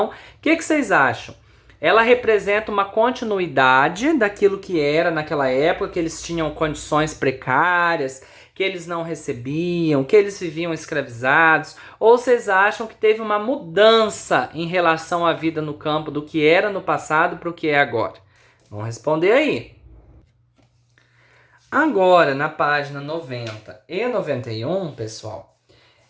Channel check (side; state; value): both; identical; correlation 1.00